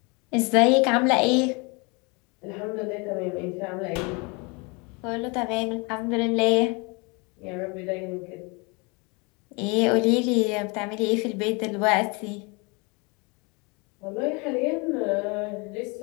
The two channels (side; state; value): right; quieter; 29.8 dB